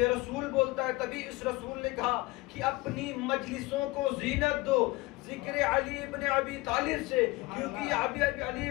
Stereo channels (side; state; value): right; quieter; 21.6 dB